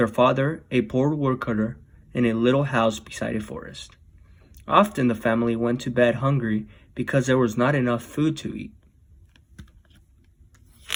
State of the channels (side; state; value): both; identical; correlation 1.00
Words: father, a poor woodcutter, in a little house beside a forest. Often the family went to bed hungry because there was not enough food to eat.